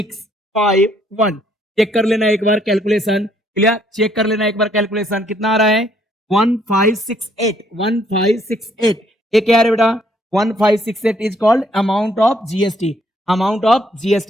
5 1, चेक कर लेना एक बार कैलकुलेशन, क्लियर, चेक कर लेना एक बार कैलकुलेशन, कितना आ रहा है 1568, 1568, ये क्या है बेटा 1568 is called amount of GST, amount of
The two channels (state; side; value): normal; both; correlation 0.67